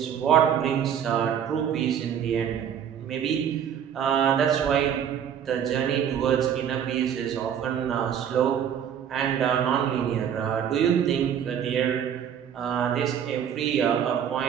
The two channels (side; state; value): left; quieter; 8.8 dB